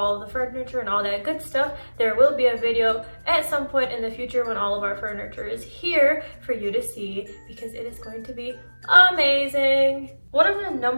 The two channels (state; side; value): inverted; both; correlation -1.00